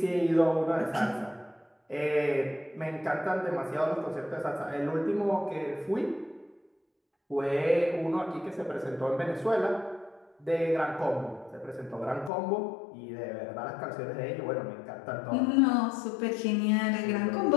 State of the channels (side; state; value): right; drops out; at 12.3 s